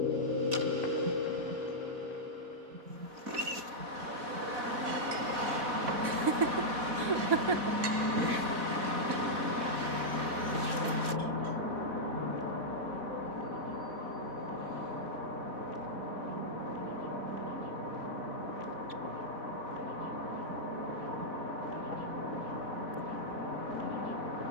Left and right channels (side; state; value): left; late; 4.1 ms